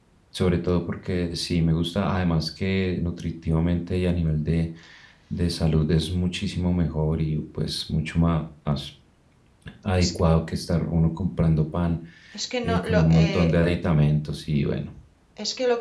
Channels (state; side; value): identical; both; correlation 1.00